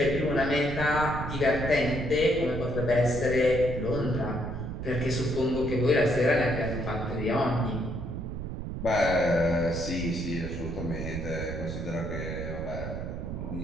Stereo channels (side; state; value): right; noise; rumble, 6 dB below the sound